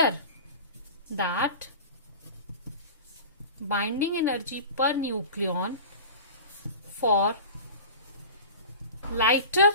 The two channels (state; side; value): inverted; both; correlation -0.36